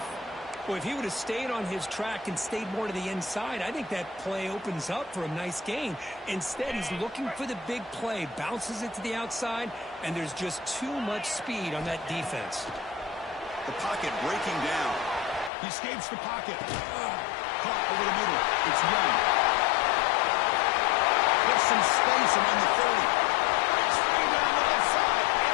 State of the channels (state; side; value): drops out; right; at 15.5 s